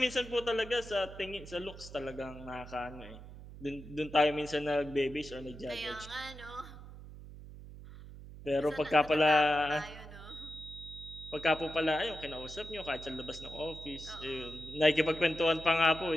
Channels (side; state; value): right; noise; hum, 15 dB below the sound